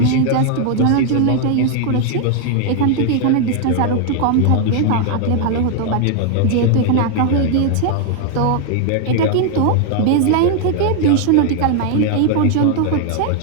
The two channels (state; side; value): different; both; correlation 0.00